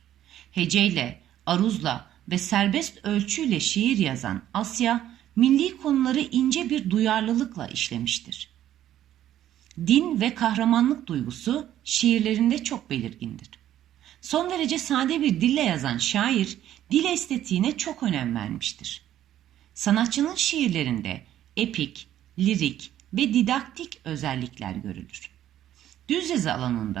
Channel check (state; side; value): quieter; left; 12.0 dB